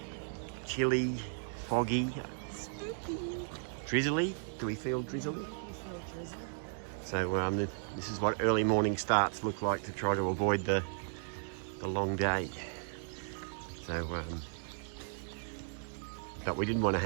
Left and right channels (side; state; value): left; silent; digital silence